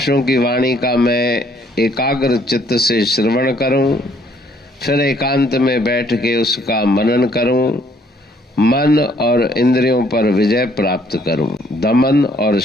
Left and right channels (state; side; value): normal; both; correlation 0.64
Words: की वाणी का मैं एकाग्र चित्त से श्रवण करूं, फिर एकांत में बैठ के उसका मनन करूं। मन और इंद्रियों पर विजय प्राप्त करूं। दमन और